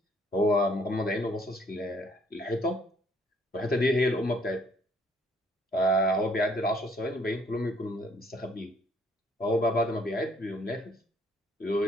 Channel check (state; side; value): normal; both; correlation 0.64